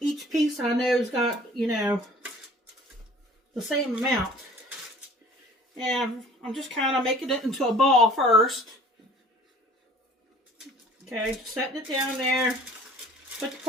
each piece I know's got, you know, the same amount. And I'm just kind of making it into a ball first. Okay, setting it down there. Put the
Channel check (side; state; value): both; normal; correlation 0.49